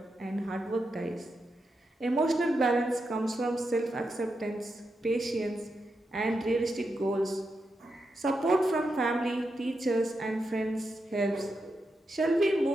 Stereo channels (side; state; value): both; normal; correlation 0.86